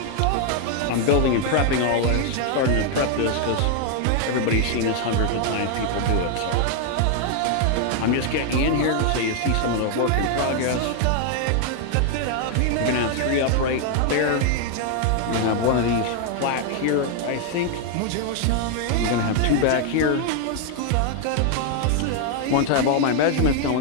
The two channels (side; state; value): both; different; correlation 0.00